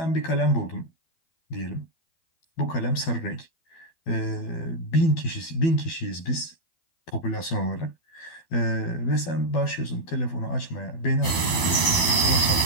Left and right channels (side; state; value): right; late; 12 ms